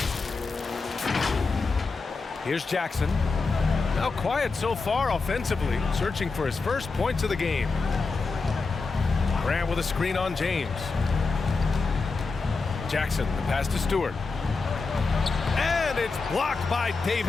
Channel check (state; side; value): quieter; right; 4.2 dB